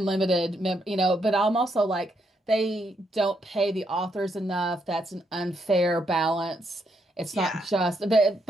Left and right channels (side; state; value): both; normal; correlation 0.77